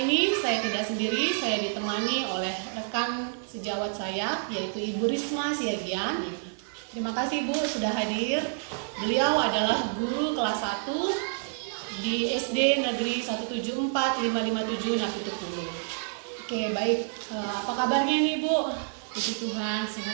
ini saya tidak sendiri, saya ditemani oleh rekan sejawat saya, yaitu Ibu Risma Siagian. Terima kasih Bu sudah hadir. Beliau adalah guru kelas 1 di SD Negeri 174557 Napitupulu. Oke, baik. Apa kabarnya nih Bu? Puji Tuhan,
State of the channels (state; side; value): silent; left; digital silence